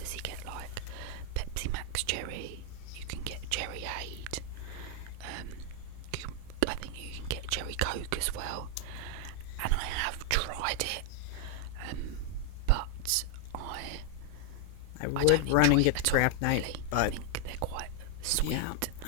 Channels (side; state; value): both; different; correlation 0.00